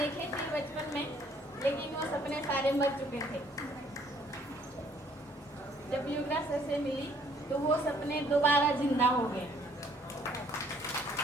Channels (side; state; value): both; normal; correlation 0.63